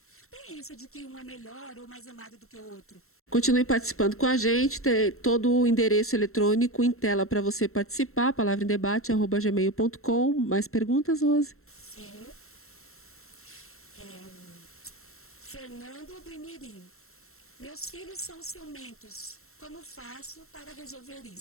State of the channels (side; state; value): right; late; 0.63 ms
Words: Tem isso de que um é melhor ou mais amado do que o outro. Continue participando com a gente, tem todo o endereço eletrônico em tela para você participar, palavraemdebate@gmail.com. Mais perguntas, Rose? Sim. Fernando do Imirim. Meus filhos são ciumentos. Como faço para resolver